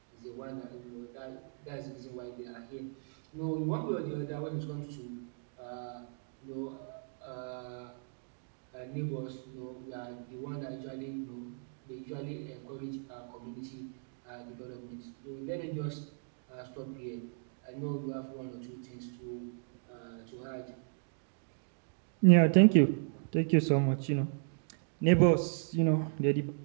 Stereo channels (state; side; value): silent; left; digital silence